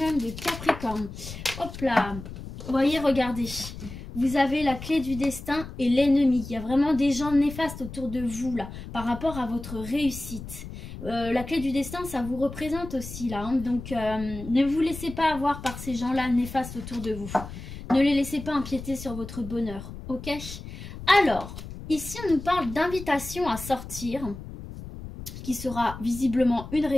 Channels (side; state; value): left; noise; rumble, 11 dB below the sound